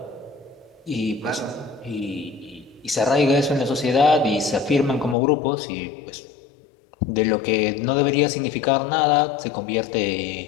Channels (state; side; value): drops out; right; at 5.2 s